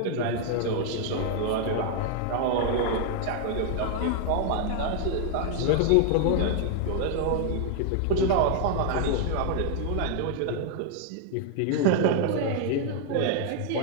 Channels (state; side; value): different; both; correlation 0.00